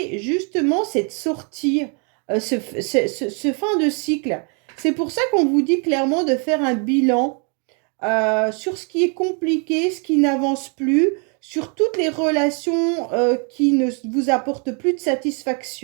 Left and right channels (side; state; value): left; quieter; 38.0 dB